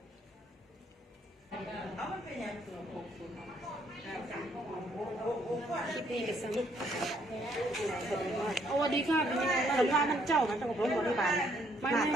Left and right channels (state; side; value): normal; both; correlation 0.68